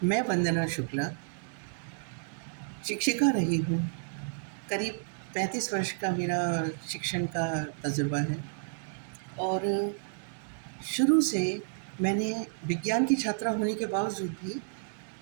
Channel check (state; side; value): silent; left; digital silence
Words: मैं वंदना शुक्ला शिक्षिका रही हूँ। करीब 35 वर्ष का मेरा शिक्षण का तजुर्बा है और शुरू से मैंने विज्ञान की छात्रा होने के बावजूद भी